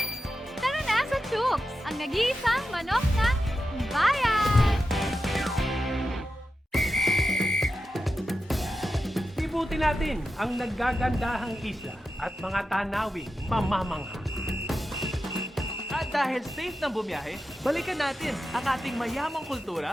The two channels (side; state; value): both; normal; correlation 0.90